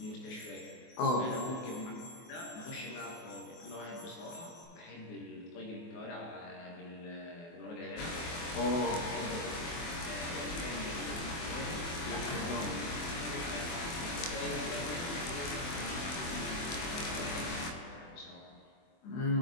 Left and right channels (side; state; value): right; late; 24 ms